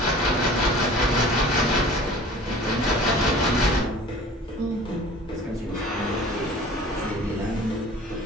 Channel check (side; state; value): both; normal; correlation 0.45